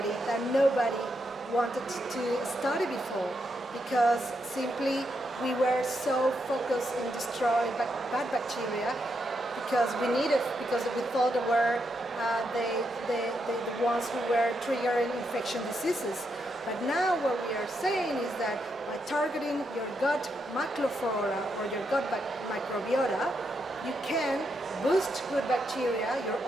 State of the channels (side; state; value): both; normal; correlation 0.81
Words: that nobody wanted to study before, because simply we were so focused in destroying bad bacteria because we thought they were the ones who were triggering infection diseases. But now what we are saying is that by targeting your gut microflora or your gut microbiota, you can boost good bacteria, your